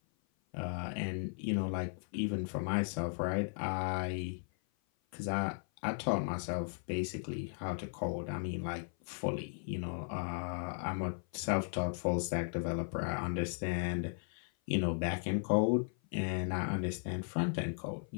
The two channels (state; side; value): silent; right; 53 dB below the other